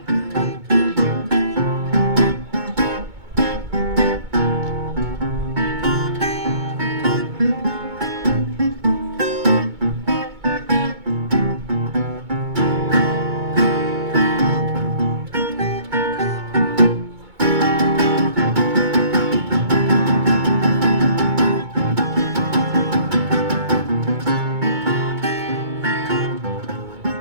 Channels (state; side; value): late; left; 2.2 ms